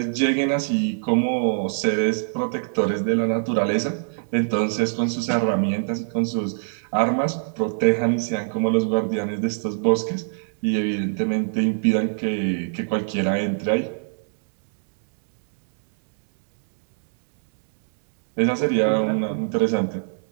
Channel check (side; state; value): left; silent; digital silence